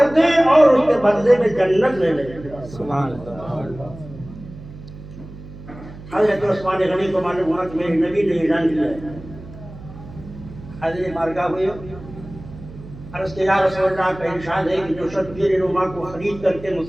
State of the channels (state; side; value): noise; right; hum, 16 dB below the sound